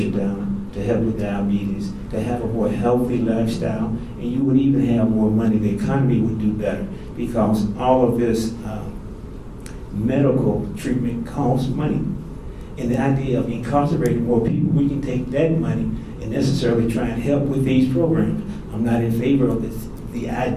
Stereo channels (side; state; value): both; identical; correlation 1.00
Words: down, to help with diabetes, to have a more healthy lifestyle, and you would even have more money. The economy would do better because all of this medical treatment costs money. And the idea of incarcerating more people, we can take that money and necessarily try and help with these programs. I'm not in favor of the